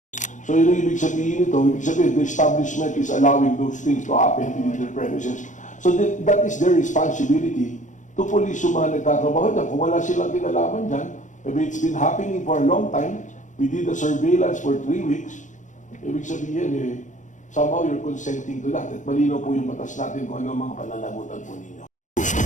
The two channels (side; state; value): right; late; 0.36 ms